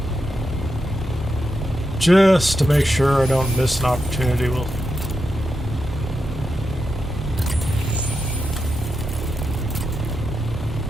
Just to make sure I don't miss an opportunity. We'll...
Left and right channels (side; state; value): both; normal; correlation 0.87